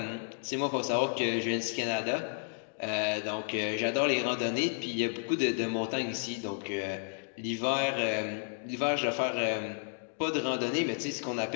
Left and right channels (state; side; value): silent; right; digital silence